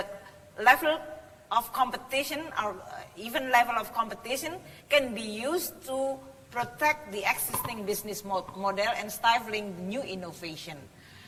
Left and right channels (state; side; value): identical; both; correlation 1.00